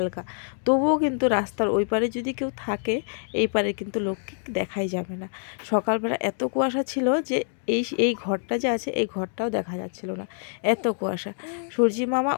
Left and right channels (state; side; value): silent; right; 60 dB below the other